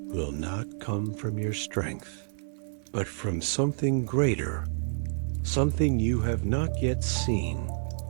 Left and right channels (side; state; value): left; silent; digital silence